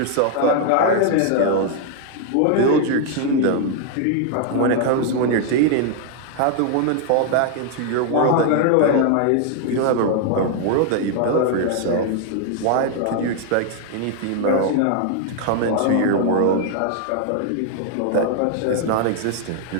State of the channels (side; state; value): both; different; correlation 0.00